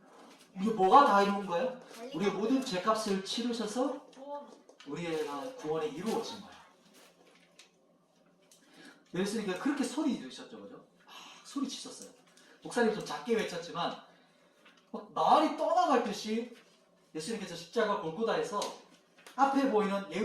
이게 뭐가 다 이룬 거예요? 우리의 모든 죄값을 치르셔서 구원. 우리의 구원이 이루어진 거예요. 예수님께서 그렇게 소리 지르셨죠, 그죠? 소리 치셨어요. 목사님 좀 작게 외쳤지만 막 말이 떠나갈 듯이 예수님께서 십자가 골고다에서 앞에 보이는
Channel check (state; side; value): identical; both; correlation 1.00